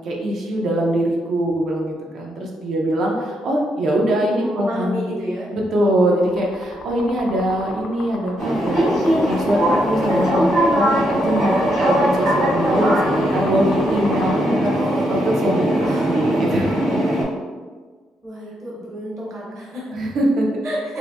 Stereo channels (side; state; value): both; normal; correlation 0.79